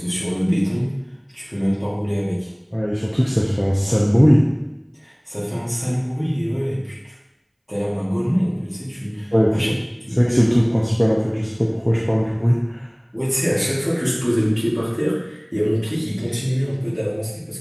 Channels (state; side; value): identical; both; correlation 1.00